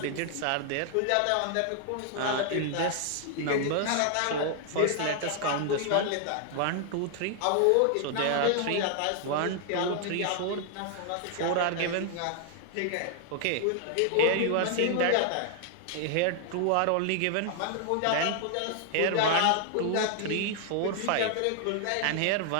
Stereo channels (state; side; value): different; both; correlation 0.00